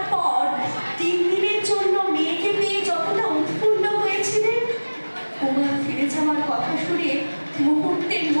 পর 3 দিনের জন্য মেয়েকে পেয়ে যতটা উৎফুল্ল হয়েছিলেন, উমা ফিরে যাওয়ার কথা শুনে মুহূর্তের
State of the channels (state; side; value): inverted; both; correlation -1.00